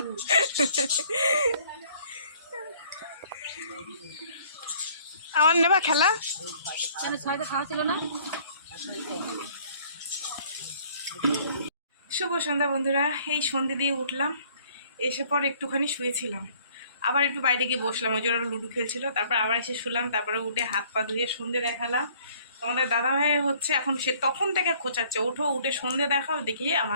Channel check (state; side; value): inverted; both; correlation -0.58